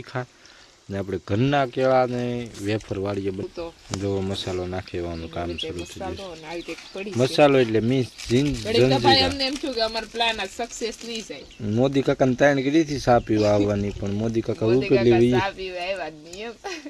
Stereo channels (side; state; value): both; identical; correlation 1.00